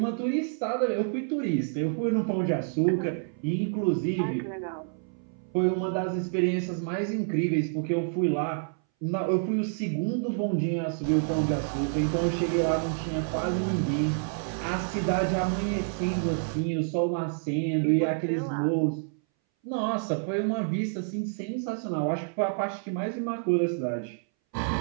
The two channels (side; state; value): left; silent; 59 dB below the other